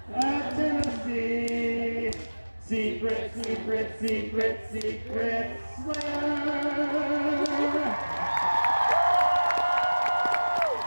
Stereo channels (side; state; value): both; inverted; correlation -1.00